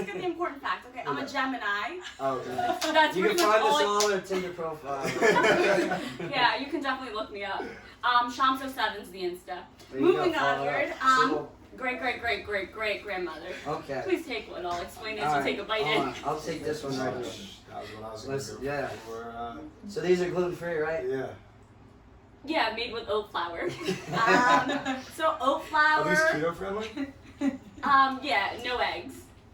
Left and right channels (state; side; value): identical; both; correlation 1.00